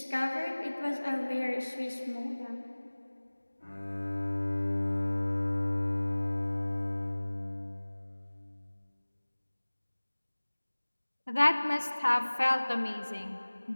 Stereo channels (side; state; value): both; inverted; correlation -1.00